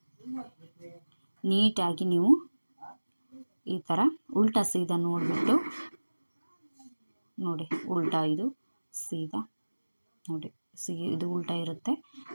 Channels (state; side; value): inverted; both; correlation -1.00